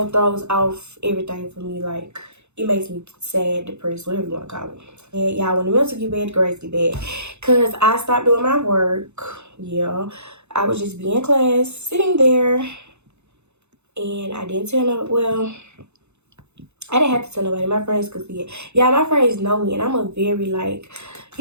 throws off everything for me. Like it makes me sad, depressed, whatever you want to call it. And y'all, when the mental get bad, the grades get bad. Cause I stopped doing my work. Yeah. I would just be in class, sitting there. And I didn't tell no, well, I didn't have to tell nobody. My friends could see it. Yeah, my friends know me, and I'm a very, like,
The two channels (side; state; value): left; late; 0.81 ms